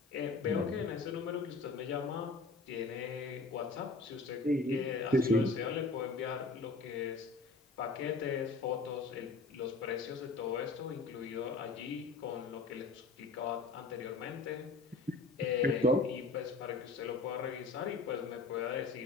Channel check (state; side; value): quieter; right; 3.6 dB